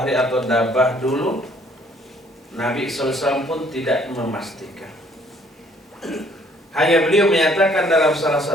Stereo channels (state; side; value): normal; both; correlation 0.62